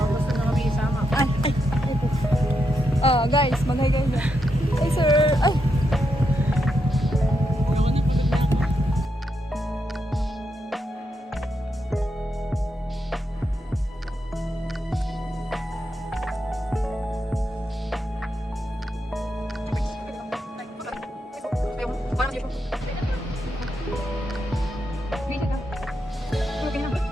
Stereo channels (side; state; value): both; normal; correlation 0.83